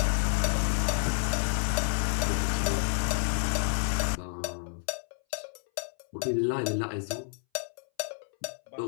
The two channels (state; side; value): silent; right; 58 dB below the other